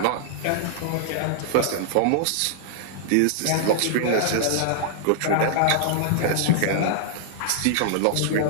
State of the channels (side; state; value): both; different; correlation -0.01